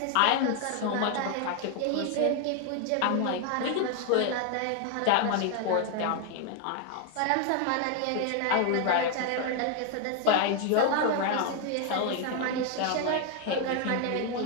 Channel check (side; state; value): both; different; correlation 0.01